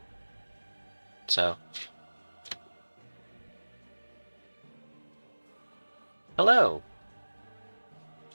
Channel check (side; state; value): both; inverted; correlation -1.00